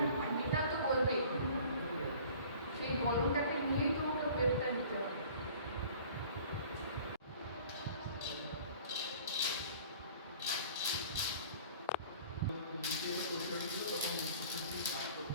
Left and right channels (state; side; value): inverted; both; correlation -0.48